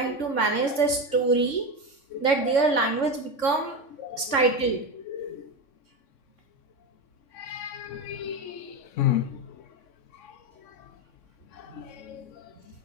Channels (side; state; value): right; late; 3.6 ms